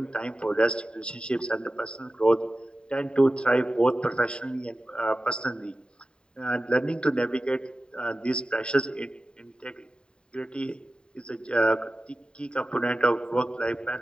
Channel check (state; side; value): late; right; 0.050 ms